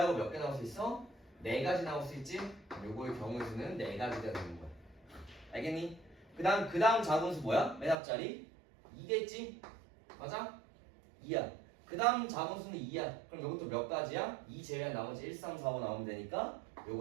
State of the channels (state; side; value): drops out; left; at 8.0 s